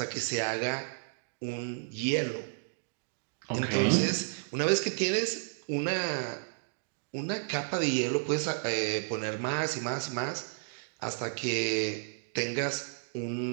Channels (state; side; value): silent; left; 56 dB below the other